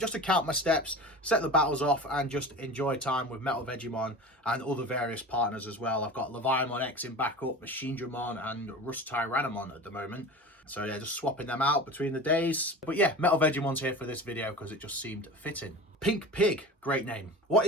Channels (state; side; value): normal; both; correlation 0.34